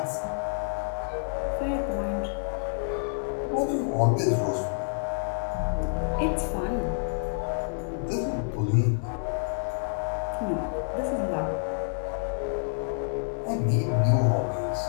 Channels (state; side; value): silent; right; digital silence